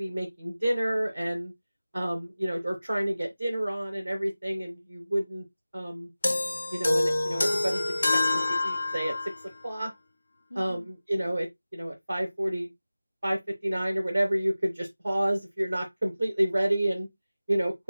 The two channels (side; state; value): both; inverted; correlation -0.96